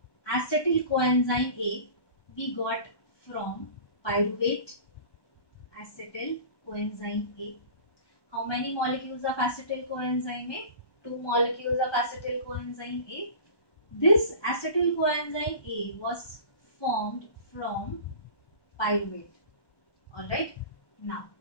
acetyl coenzyme A we got from pyruvate. Acetyl coenzyme A. How many molecules of acetyl coenzyme A? 2 molecules of acetyl coenzyme A. This acetyl coenzyme A was formed from pyruvate. Alright. Now,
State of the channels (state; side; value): late; right; 1.2 ms